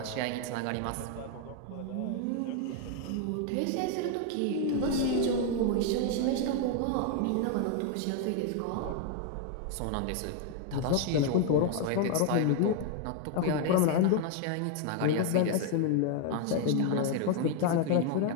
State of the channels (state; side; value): different; both; correlation 0.01